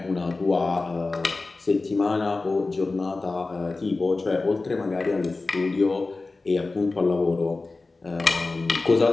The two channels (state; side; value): quieter; right; 3.5 dB